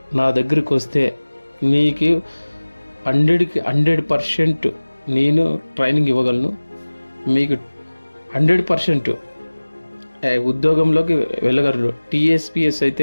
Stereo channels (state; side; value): inverted; both; correlation -1.00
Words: నా దగ్గరికి వస్తే మీకు 100% నేను ట్రైనింగ్ ఇవ్వగలను. మీకు 100% ఉద్యోగంలోకి వెళ్ళగలరు. టీఎస్పిఎస్